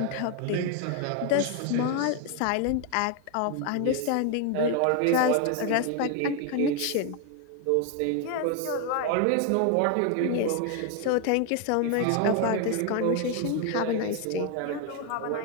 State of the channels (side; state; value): both; different; correlation 0.01